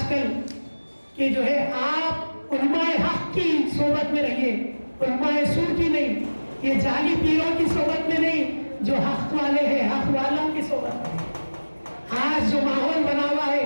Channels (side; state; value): both; inverted; correlation -1.00